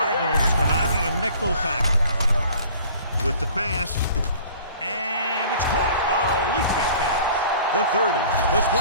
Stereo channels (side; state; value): both; inverted; correlation -0.49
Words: come out in a nickel package with the pass. And it's caught. A leaping catch. The 30, the